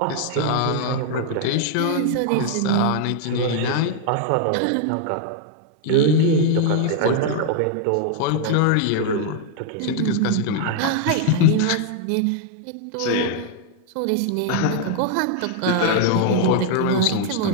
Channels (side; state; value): both; different; correlation 0.00